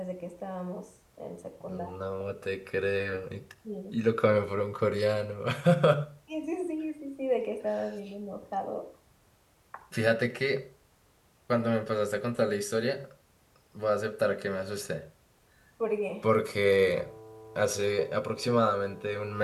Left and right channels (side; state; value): both; identical; correlation 1.00